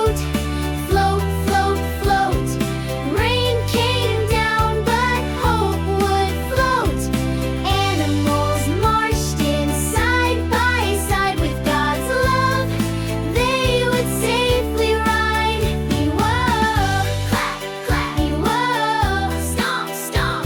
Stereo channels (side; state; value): both; identical; correlation 1.00